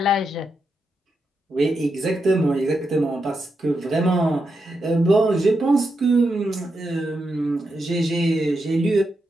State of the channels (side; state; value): both; normal; correlation 0.85